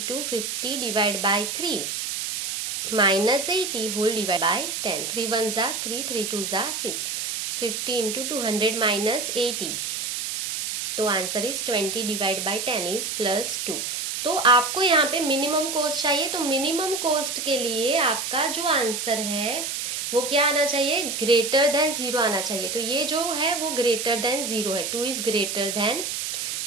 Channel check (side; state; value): right; noise; hiss, 3 dB below the sound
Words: 50 divide by 3 minus 80 whole divide by 10। 3 1 जा 3, 3 2 जा 6, 50 इंटू 200 माइनस 80, तो answer is 20 divide by 10 is +2। तो आपको यहाँ पे मिनिमम कॉस्ट चाहिए, तो मिनिमम कॉस्ट के लिए आपका जो आंसर है वो क्या आना चाहिए, ग्रेटर देन 0 आना चाहिए। तो ये जो है वो ग्रेटर देन 0 है, 2 इज ग्रेटर देन